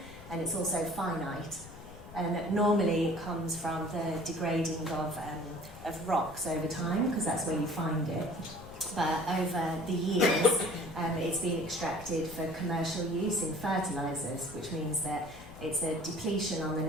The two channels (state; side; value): noise; left; rumble, 17 dB below the sound